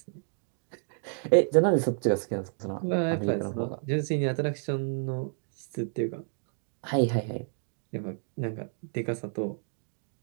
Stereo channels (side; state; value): left; silent; digital silence